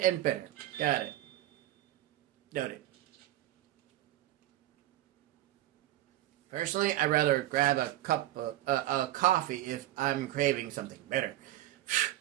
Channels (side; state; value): left; quieter; 14.8 dB